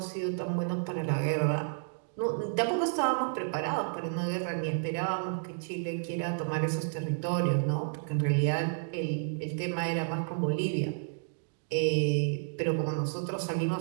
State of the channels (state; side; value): silent; left; digital silence